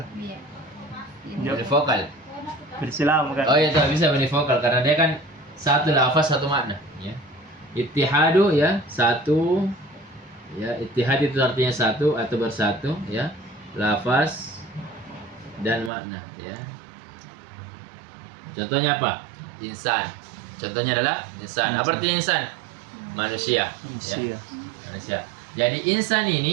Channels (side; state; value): left; drops out; at 15.9 s